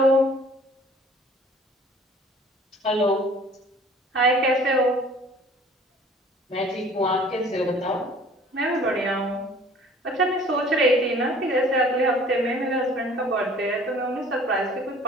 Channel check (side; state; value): both; normal; correlation 0.51